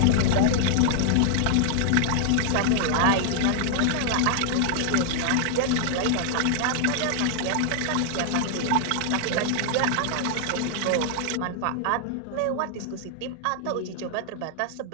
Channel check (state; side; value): different; both; correlation 0.00